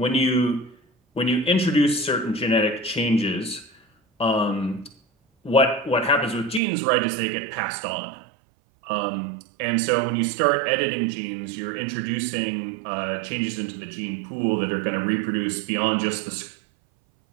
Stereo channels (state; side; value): drops out; left; at 6.6 s